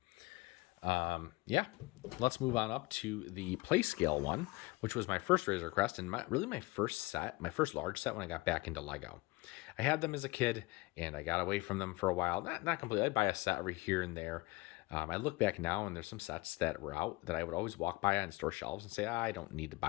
Yeah, let's move on up to the play scale one, which was my first Razorcrest and my first large set when I got back into Lego. I had them as a kid and I got away from them for a while. Not completely. I'd buy a set every here and there. I look back now and there's some sets that were out that I would always walk by on store shelves and say, I don't need to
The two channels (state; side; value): quieter; right; 22.8 dB